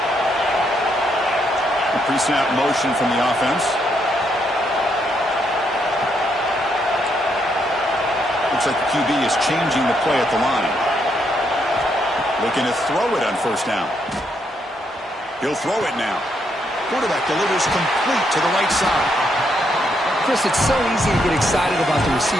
Pre-snap motion from the offense. Looks like the QB is changing the play at the line. Looking to throw it on first down. He'll throw it now. Quarterback delivers complete to the right side. Chris, it's so easy to get excited about the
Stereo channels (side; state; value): both; normal; correlation 0.76